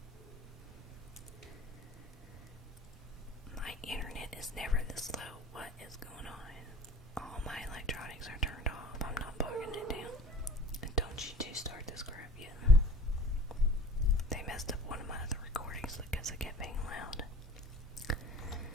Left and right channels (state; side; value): normal; both; correlation 0.46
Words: is never this low. What is going on? All my electronics are turned off. I'm not bogging it down. And don't you two start this crap yet. They messed up one of my other recordings because it kept being loud.